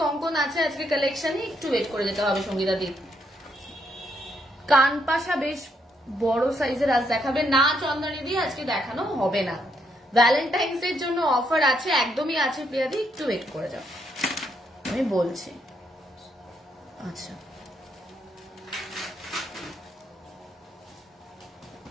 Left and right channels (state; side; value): normal; both; correlation 0.75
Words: কঙ্কন আছে আজকে কালেকশনে, একটু ওয়েট করে যেতে হবে সঙ্গীতা দি। কানপাশা বেশ বড় সাইজের আজ দেখাবে না চন্দনী দি, আজকে দেখানো হবে না। ভ্যালেন্টাইন্স এর জন্য অফার আছে, একদমই আছে প্রিয়া দি, একটু ওয়েট করে যাও, আমি বলছি। আচ্ছা